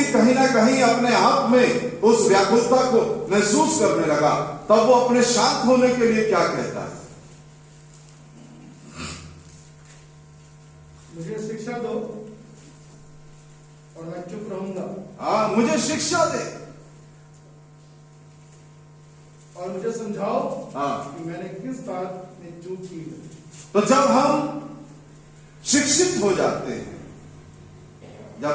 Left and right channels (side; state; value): both; identical; correlation 1.00